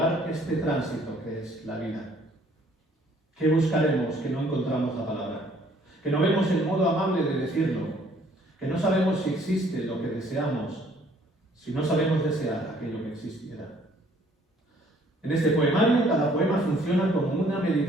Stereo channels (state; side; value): normal; both; correlation 0.60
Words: este tránsito que es la vida. ¿Qué buscaremos que no encontramos la palabra? que no vemos el modo amable de decirlo, que no sabemos si existe lo que deseamos, si no sabemos desear aquello que existiera. En este poemario, cada poema funciona como una